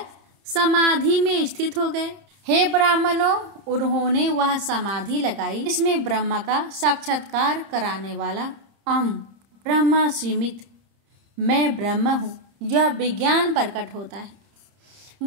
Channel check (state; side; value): late; left; 31 ms